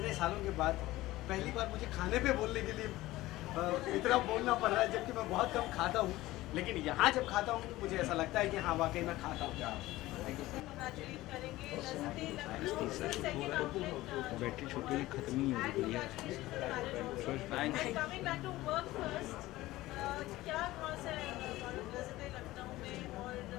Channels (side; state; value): right; quieter; 17.4 dB